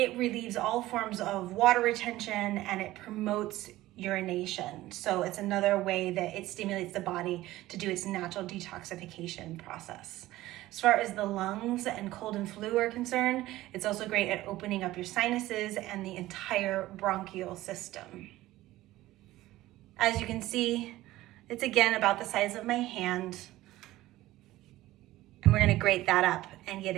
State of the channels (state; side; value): quieter; left; 16.5 dB